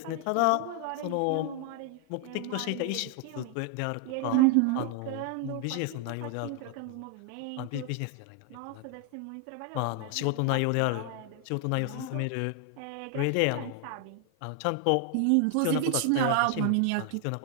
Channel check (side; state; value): both; different; correlation 0.00